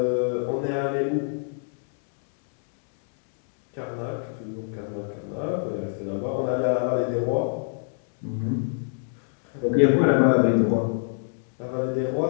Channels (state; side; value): silent; right; 61 dB below the other